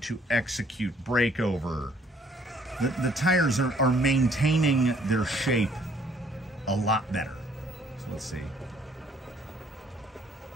execute breakover, the tires are maintaining their shape a lot better. So let's see.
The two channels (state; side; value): normal; both; correlation 0.62